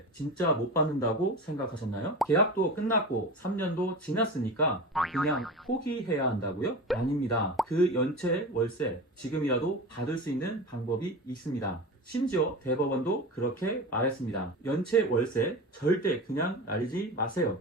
진짜 못 받는다고 생각하셨나요? 계약도 끝났고 3년도 지났으니까 그냥 포기해야 한다고요? 아닙니다. 그 연체 월세 지금이라도 받을 수 있는 방법이 있습니다. 심지어 대법원도 그렇게 말했습니다. 연체 월세 절대 그냥 날리지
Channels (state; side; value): normal; both; correlation 0.29